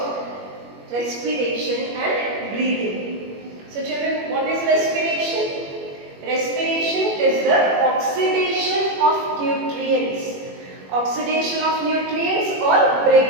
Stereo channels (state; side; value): late; left; 21 ms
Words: respiration and breathing. So children, what is respiration? Respiration is the oxidation of nutrients. Oxidation of nutrients or